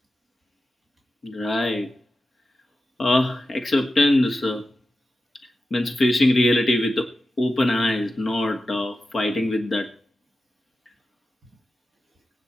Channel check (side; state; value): both; normal; correlation 0.92